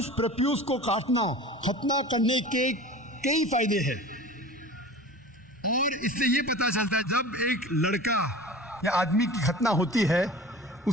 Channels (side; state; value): both; normal; correlation 0.38